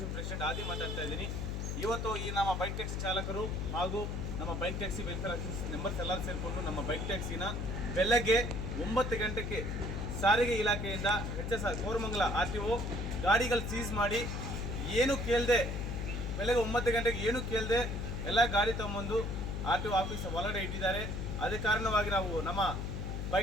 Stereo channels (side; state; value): left; noise; hum, 3 dB below the sound